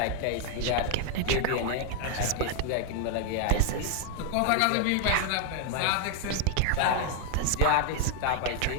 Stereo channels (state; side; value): different; both; correlation 0.00